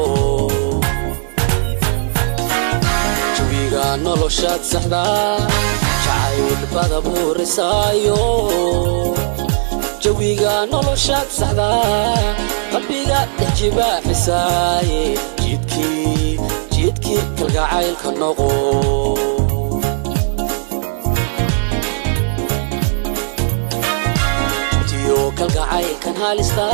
jawiga noloshaad saxda jacaylbada buurisaayo jawiga noloshaad saxda qalbiga dajibaaxisaaye jidkii kalgacaylka noqo kalgacaylkan halista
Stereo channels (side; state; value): left; silent; digital silence